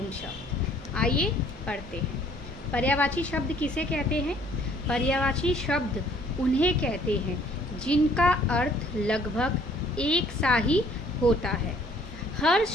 शब्द। आइए पढ़ते हैं। पर्यायवाची शब्द किसे कहते हैं? पर्यायवाची शब्द उन्हें कहते हैं जिनका अर्थ लगभग एक सा ही होता है। हर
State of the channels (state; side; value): normal; both; correlation 0.59